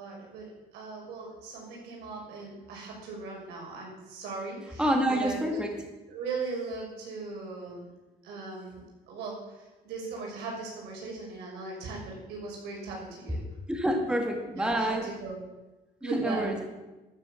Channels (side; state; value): both; normal; correlation 0.64